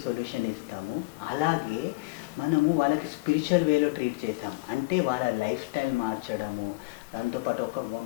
సొల్యూషన్ ఇస్తాము. అలాగే మనము వాళ్ళకి స్పిరిచువల్ వేలో ట్రీట్ చేస్తాం. అంటే వాళ్ళ లైఫ్ స్టైల్ మార్చడము, దాంతోపాటు ఒక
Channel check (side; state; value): right; quieter; 24.2 dB